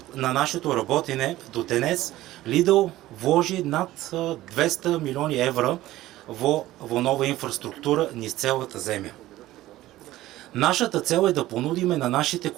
на нашето работење до денес Lidl вложи над 200 милиони евра во нова инфраструктура низ целата земја. Нашата цел е да понудиме на нашите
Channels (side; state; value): left; quieter; 15.9 dB